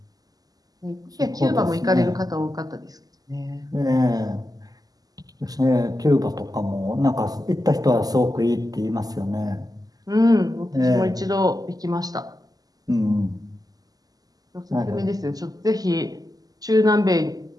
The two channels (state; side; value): late; left; 0.18 ms